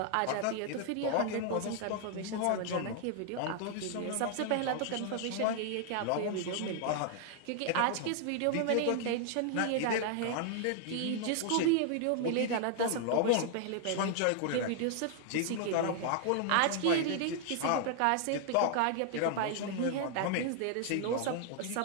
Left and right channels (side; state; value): both; different; correlation 0.00